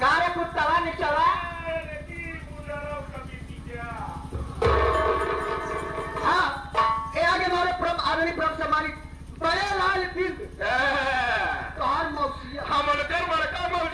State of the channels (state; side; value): identical; both; correlation 1.00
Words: कुत्ता निचला हाँ ये आगे हमारे प्रभ आदरणीय प्रभ से हमारी बड़े लाल बिंद तोहार मौसिया हम उनकर बड़का